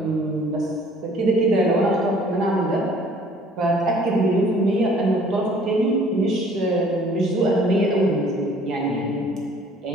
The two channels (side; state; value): both; normal; correlation 0.55